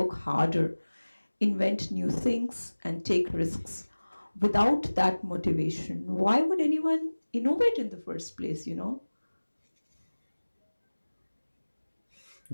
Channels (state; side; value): inverted; both; correlation -1.00